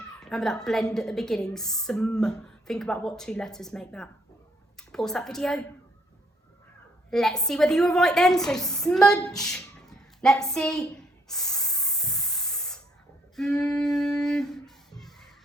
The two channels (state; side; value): normal; both; correlation 0.70